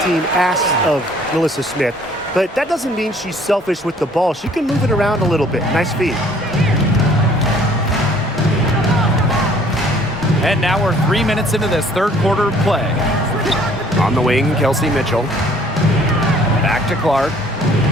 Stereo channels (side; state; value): both; normal; correlation 0.57